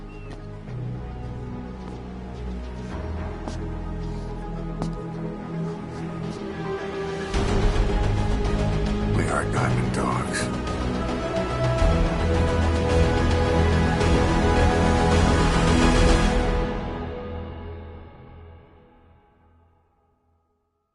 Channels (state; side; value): identical; both; correlation 1.00